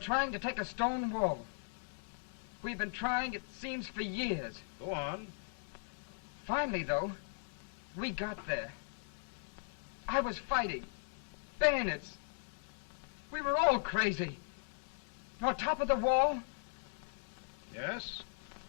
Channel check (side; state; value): right; silent; digital silence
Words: to take a stone wall. We've been trying, it seems, for years. Go on. Finally, though, we got there. I was fighting. Bayonets. We were all crazy. On top of the wall, Yes?